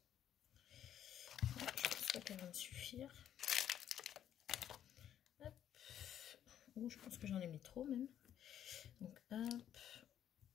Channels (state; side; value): quieter; right; 10.3 dB